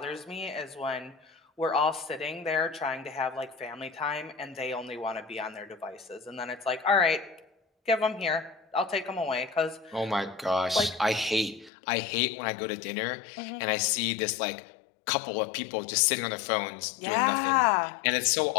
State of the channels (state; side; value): drops out; right; at 11.7 s